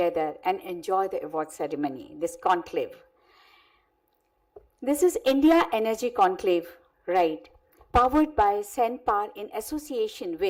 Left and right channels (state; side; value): identical; both; correlation 1.00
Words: and enjoy the award ceremony, this conclave. This is India Energy Conclave, right, powered by Senpar in association